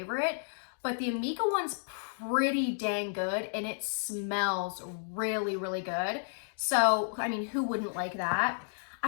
but the Amika one's pretty dang good and it smells really, really good. So, I mean, who wouldn't like that?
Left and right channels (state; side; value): silent; right; digital silence